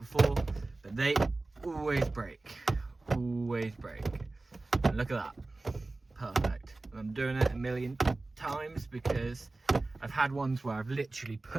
but they always break. Always break. And look at that. Perfect. I'm doing it a million times because I've had ones where I've literally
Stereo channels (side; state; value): left; quieter; 3.2 dB